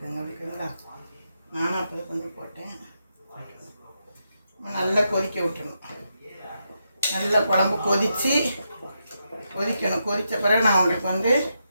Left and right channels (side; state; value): both; inverted; correlation -0.84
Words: ஓகேங்களா? நானும் அப்போ தான் கொஞ்சம் போட்டேன். நம்ம நல்லா கொதிக்க விட்டுணும். நல்லா குழம்பு கொதிக்கணும். கொதித்த பிறகு நான் உங்களுக்கு வந்து